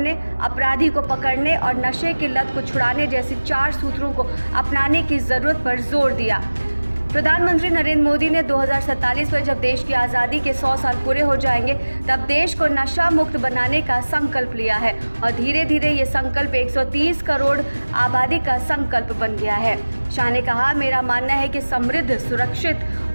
अपराधी को पकड़ने और नशे की लत को छुड़ाने जैसी 4 सूत्रों को अपनाने की जरूरत पर जोर दिया। प्रधानमंत्री नरेंद्र मोदी ने 2047 में जब देश की आज़ादी के 100 साल पूरे हो जाएंगे तब देश को नशा मुक्त बनाने का संकल्प लिया है और धीरे धीरे ये संकल्प 130 करोड़ आबादी का संकल्प बन गया है। शाह ने कहा, मेरा मानना है कि समृद्ध, सुरक्षित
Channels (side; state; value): both; inverted; correlation -1.00